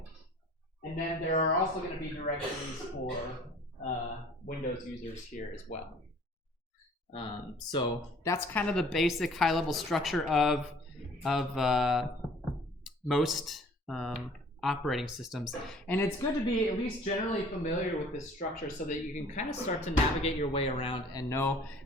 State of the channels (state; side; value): normal; both; correlation 0.52